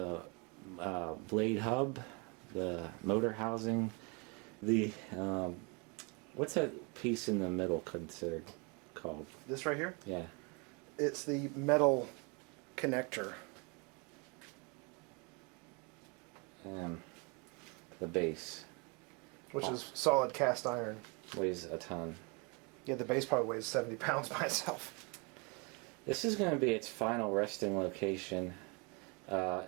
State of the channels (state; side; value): quieter; left; 31.4 dB